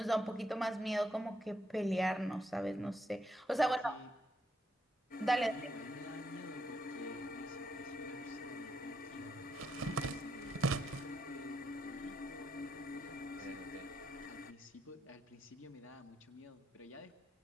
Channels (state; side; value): normal; both; correlation 0.79